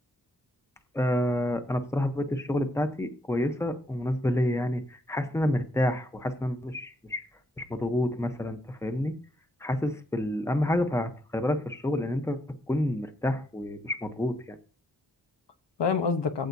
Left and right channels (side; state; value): both; normal; correlation 0.75